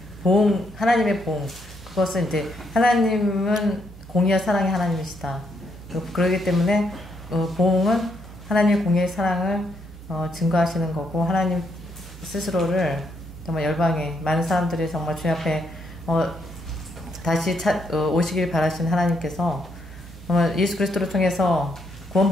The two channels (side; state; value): both; normal; correlation 0.76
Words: 하나님의 보응, 그것은 이제 하나님은 공의와 사랑의 하나님이시다. 그러기 때문에 보응은 하나님의 공의의 사랑을 증거하시는 거고, 하나님 스스로를 정말 열방에 많은 사람들이 정말 주님 앞에 다시 오시길 바라시는 하나님께서 정말 예수 그리스도를 통해서